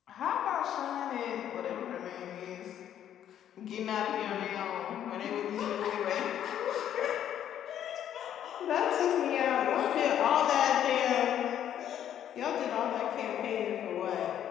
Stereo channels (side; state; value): right; quieter; 10.3 dB